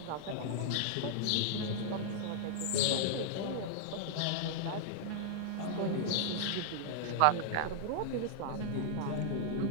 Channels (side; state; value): both; different; correlation -0.01